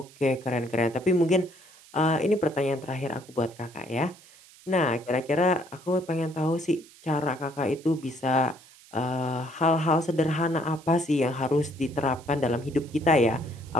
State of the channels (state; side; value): noise; right; hiss, 24 dB below the sound